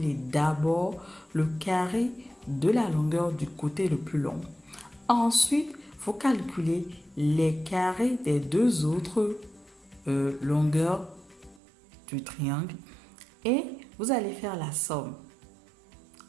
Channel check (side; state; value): left; drops out; at 11.6 s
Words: d'abord le carré de la longueur du côté le plus long. Ensuite, vous calculez les carrés des deux autres longueurs du triangle et vous allez faire la somme.